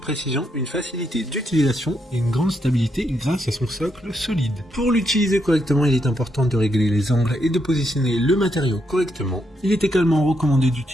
précision, une facilité d'utilisation et une grande stabilité grâce à son socle solide. Pour l'utiliser correctement, il est important de régler les angles et de positionner le matériau correctement. Il est également recommandé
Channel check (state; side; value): normal; both; correlation 0.79